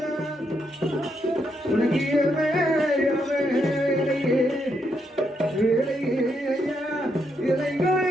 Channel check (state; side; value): normal; both; correlation 0.79